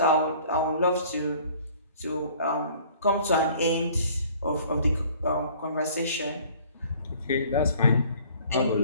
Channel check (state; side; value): inverted; both; correlation -0.52